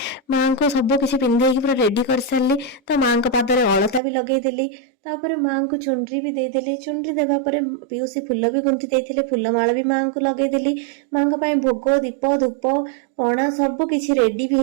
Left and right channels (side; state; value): left; drops out; at 4.0 s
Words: माँ को सब किसी पिंधे पूरा रेडी कर सारी। तो माँ को पादरे अलता भी लगेदेली तापर माँ को चुनरी भी देदेली। चुनरी देवापर पीयूसी फुल भी गुंथी देते फुलमाला भी माँ को लगेदेली। माँ को भोग दीप धूप पणा सब किसी रेडी भी